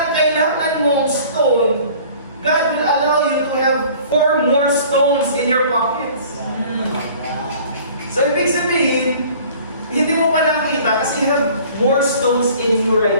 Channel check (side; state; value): both; inverted; correlation -0.49